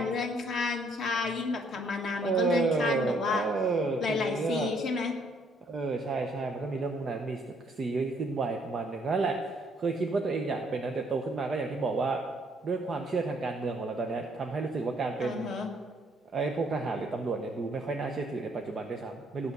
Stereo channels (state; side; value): normal; both; correlation 0.67